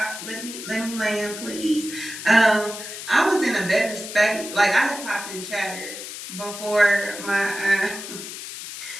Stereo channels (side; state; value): left; noise; hiss, 10 dB below the sound